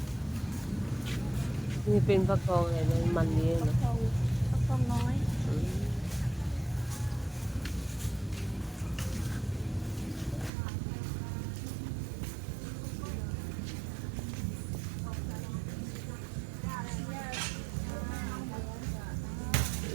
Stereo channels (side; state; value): left; drops out; at 10.5 s